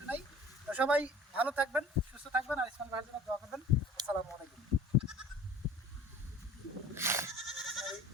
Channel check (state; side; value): normal; both; correlation 0.46